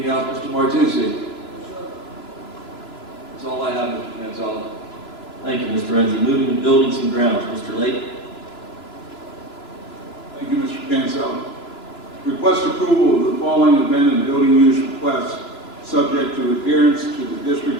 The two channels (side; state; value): right; late; 3.0 ms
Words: else, Mr. Martucci? That's all I have, Mr. Mansell. Thank you, Mr. Renzi. Moving to buildings and grounds, Mr. Lake. Thank you, Mr. Cancel. Request approval of the following event and building use requests, subject to adherence to the